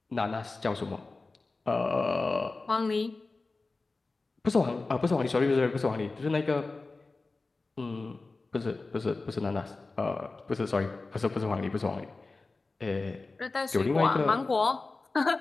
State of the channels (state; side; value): quieter; right; 3.6 dB